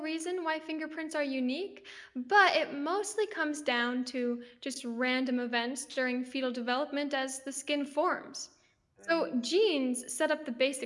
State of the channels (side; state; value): both; identical; correlation 1.00